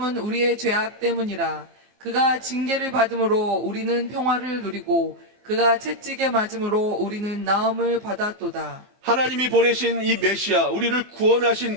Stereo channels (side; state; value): left; late; 24 ms